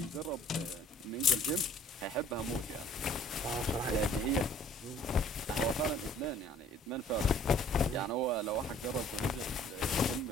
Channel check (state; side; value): normal; both; correlation 0.55